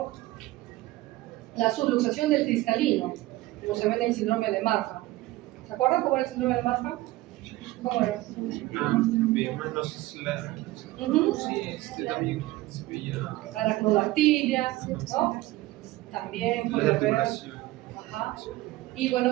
La subluxación del cristalino, como se ve en el síndrome de Marfan. ¿Se acuerdan cómo era el síndrome de Marfan? ¿Cómo era? Veíamos los sí, también se veía Aracnodactilia, ¿no? También la puede haber. articulación. Ajá. Y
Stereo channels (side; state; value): left; quieter; 18.0 dB